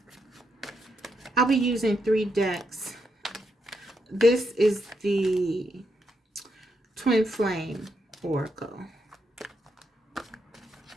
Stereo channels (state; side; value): normal; both; correlation 0.80